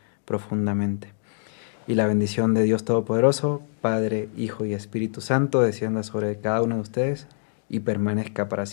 profundamente. Y la bendición de Dios Todopoderoso, Padre, Hijo y Espíritu Santo, descienda sobre cada uno de ustedes y permanezca para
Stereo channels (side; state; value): right; silent; digital silence